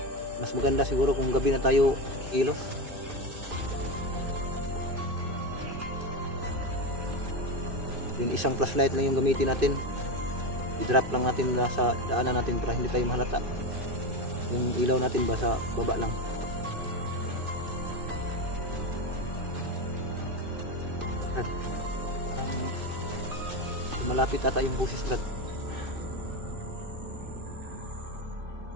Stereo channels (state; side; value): late; left; 2.5 ms